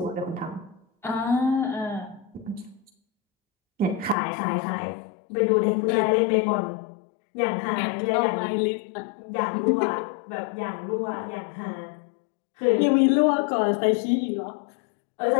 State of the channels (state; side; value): drops out; right; at 4.2 s